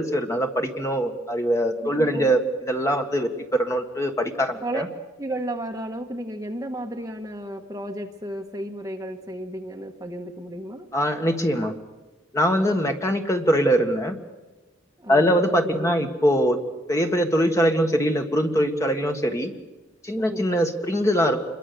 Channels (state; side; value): normal; both; correlation 0.71